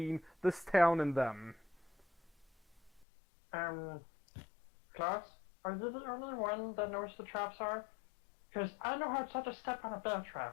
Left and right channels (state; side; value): drops out; right; at 3.1 s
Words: this town and them. Klaus, are you the only one that knows the traps are? Because I know how to step on a bear